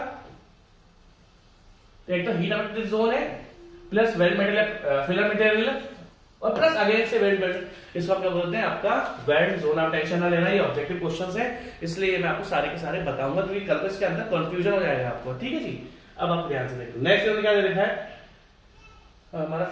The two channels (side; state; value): both; identical; correlation 1.00